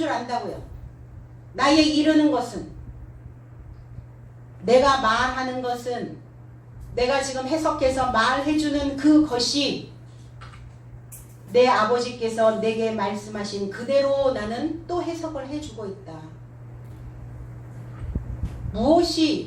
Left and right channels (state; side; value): identical; both; correlation 1.00